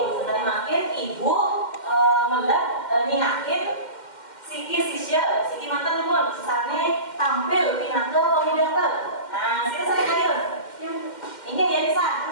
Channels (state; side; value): late; right; 2.1 ms